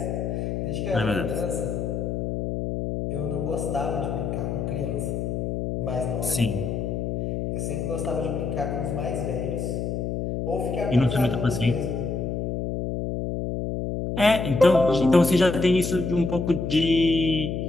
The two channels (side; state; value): left; noise; hum, 2 dB below the sound